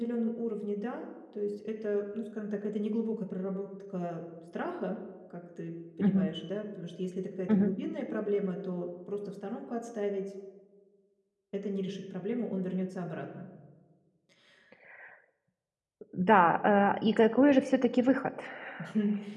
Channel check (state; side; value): identical; both; correlation 1.00